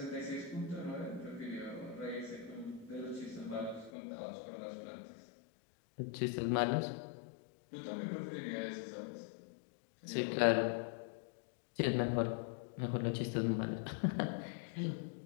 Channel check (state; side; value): drops out; right; at 3.9 s